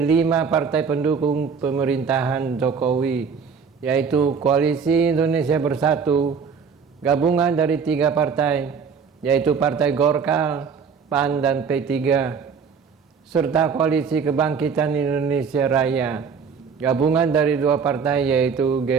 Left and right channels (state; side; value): quieter; left; 6.0 dB